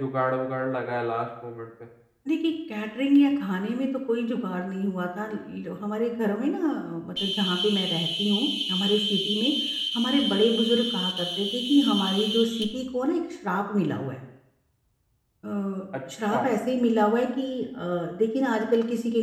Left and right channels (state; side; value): identical; both; correlation 1.00